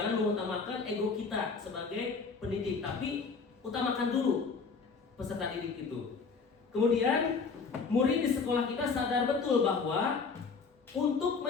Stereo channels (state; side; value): quieter; right; 4.9 dB